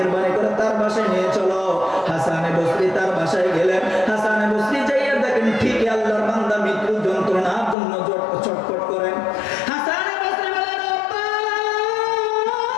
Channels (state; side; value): drops out; right; at 7.8 s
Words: করে তার বাসায় নিয়ে চলো। হাসান বসরি তার বাসায় গেলেন। হাসান বসরি যাইয়া দেখেন ঠিকই আল্লাহর বান্দা মৃত্যু যন্ত্রণার জন্য ছটফট করেন। হাসান বসরি বলেন, ও ভাই,